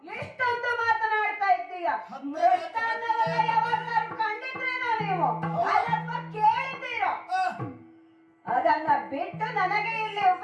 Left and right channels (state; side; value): identical; both; correlation 1.00